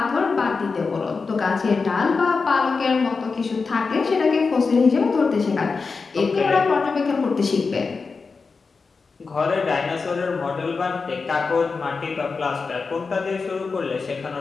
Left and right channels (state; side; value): quieter; right; 4.6 dB